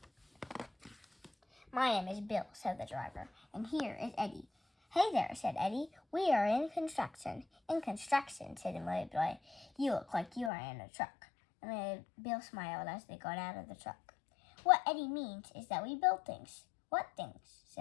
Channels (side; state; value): right; drops out; at 10.5 s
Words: "My name is Bill," said the driver. "And here is Eddie." "Hey there," said Eddie. "We are in construction." "In construction," said Amelia Bedelia. "You look like you are in a truck." Bill smiled as they got out of the truck. "What Eddie means is that we build things." "What things?"